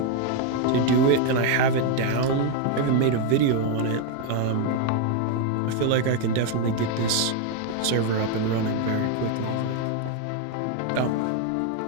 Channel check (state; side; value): different; both; correlation 0.01